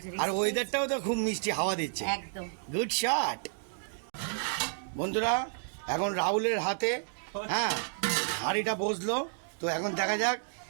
আর ওয়েদারটাও তো খুব মিষ্টি হাওয়া দিচ্ছে, একদম গুড শট। বন্ধুরা, এখন রাহুলের হাতে হ্যাঁ হাঁড়িটা বসলো, তো এখন দেখা যাক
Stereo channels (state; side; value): silent; left; digital silence